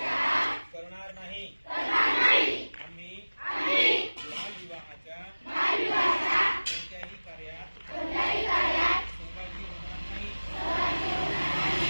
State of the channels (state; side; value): inverted; both; correlation -1.00